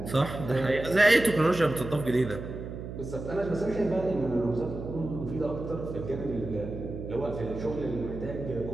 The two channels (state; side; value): noise; right; hum, 9 dB below the sound